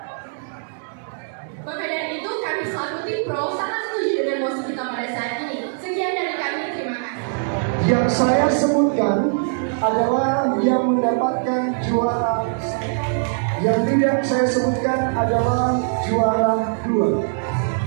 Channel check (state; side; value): silent; left; digital silence